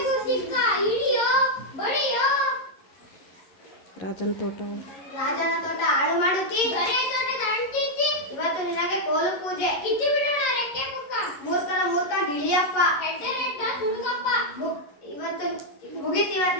ಸಿಕ್ಕ. ಹಿಡಿಯೋ ಬಡಿಯೋ. ರಾಜನ ತೋಟ. ರಾಜನ ತೋಟ ಹಾಳು ಮಾಡುತ್ತಿ. ಗಣೇಶ ತೋಟದ ಅಂಟಿಸಿ. ಇವತ್ತು ನಿನಗೆ ಕೋಲು ಪೂಜೆ. ಕಿಚ್ಚಿ ಬಿಡೋಣ ರೆಕ್ಕೆ ಮುಕ್ಕ. ಮೂರ್ಖ ಗಿಳಿಯಪ್ಪ. ಹೆಡ್ಡ ಹುಡುಗಪ್ಪ. ಇವತ್ತು ಮುಗಿತಿವತ್ತು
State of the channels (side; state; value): right; late; 11 ms